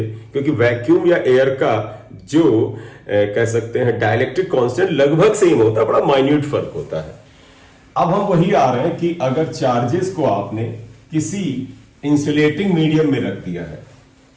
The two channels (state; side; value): identical; both; correlation 1.00